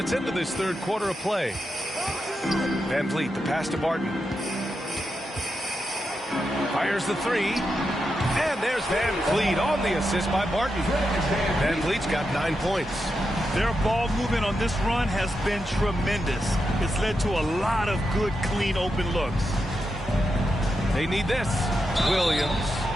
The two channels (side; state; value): both; normal; correlation 0.86